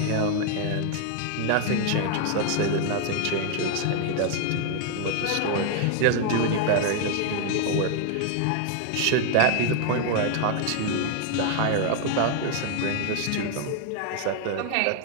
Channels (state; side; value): different; both; correlation 0.00